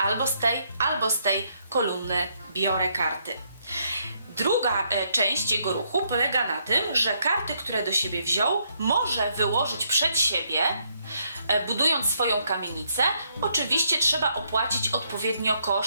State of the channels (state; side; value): inverted; both; correlation -0.73